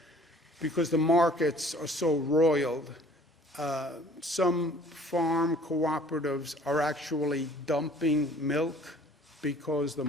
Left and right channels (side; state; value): both; normal; correlation 0.52